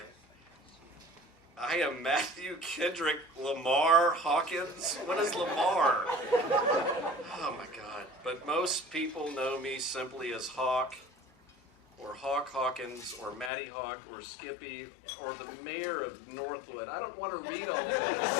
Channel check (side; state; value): right; drops out; at 13.5 s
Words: I am Matthew Kendrick Lamar Hawkins. What is Lamar? Oh my God. But most people know me simply as Hawk, or Hawk Hawkins, or Matty Hawk, or Skippy, or the mayor of Northwood. I don't want to read all this.